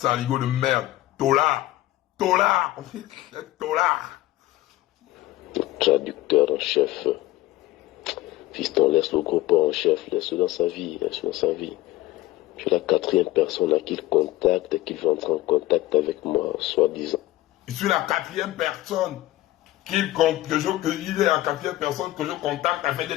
de merde. Tola. Traducteur en chef. Fiston, laisse le groupe en chef, laisse-le dans sa vie, Je suis la 4e personne à qui il contacte et qui veut entrer en contact avec moi, soi-disant. Je suis la 4e personne il est la 4e personne que je contacte afin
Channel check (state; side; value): quieter; right; 16.8 dB